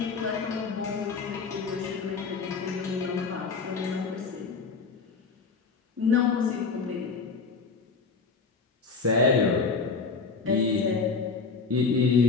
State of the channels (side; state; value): right; quieter; 4.7 dB